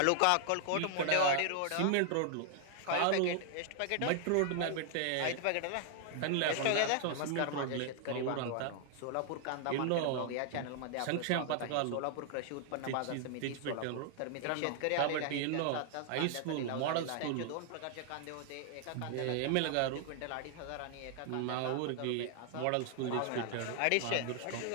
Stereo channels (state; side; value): different; both; correlation 0.00